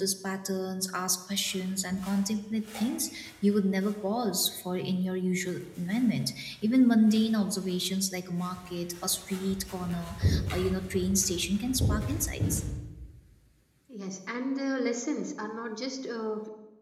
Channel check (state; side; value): identical; both; correlation 1.00